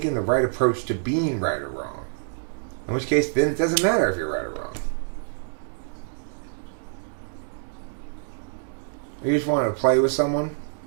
the right approach to being right or wrong. In which case, then it doesn't matter if you're right or wrong. You just want to play with someone?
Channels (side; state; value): left; silent; digital silence